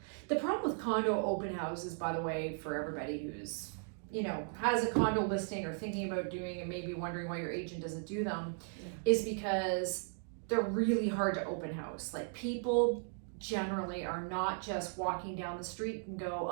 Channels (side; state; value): left; silent; 53 dB below the other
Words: The problem with condo open houses, by the way, for everybody who's, you know, has a condo listing or thinking about doing and maybe wondering why your agent doesn't do them, is because they're really hard to open house. Like, people generally are not just walking down the street and go,